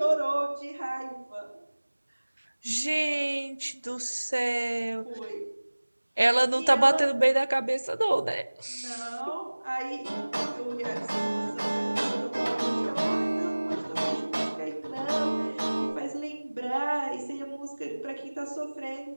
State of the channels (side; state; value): both; inverted; correlation -1.00